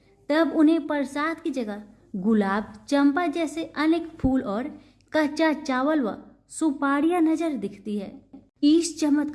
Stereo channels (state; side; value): identical; both; correlation 1.00